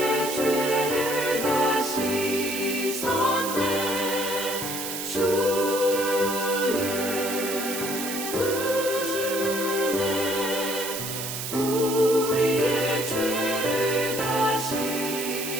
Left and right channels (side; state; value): right; noise; hiss, 5 dB below the sound